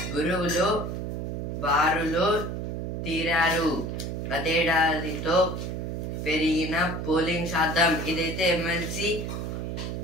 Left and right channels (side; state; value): right; noise; hum, 4 dB below the sound